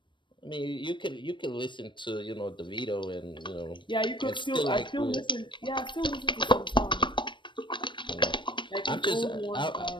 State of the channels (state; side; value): late; right; 0.23 ms